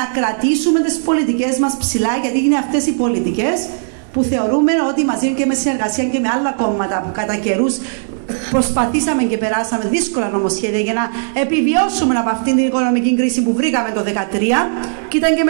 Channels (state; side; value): silent; left; digital silence